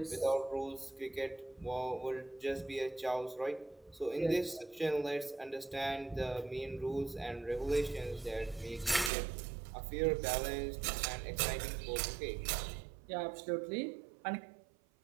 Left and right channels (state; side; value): drops out; left; at 9.1 s